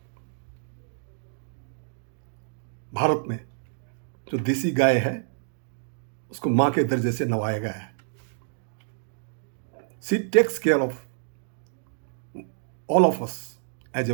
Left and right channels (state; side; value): silent; left; digital silence